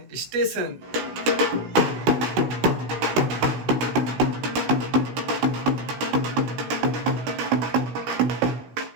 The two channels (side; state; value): left; late; 16 ms